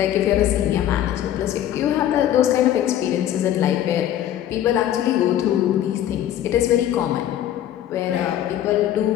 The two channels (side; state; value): right; quieter; 11.6 dB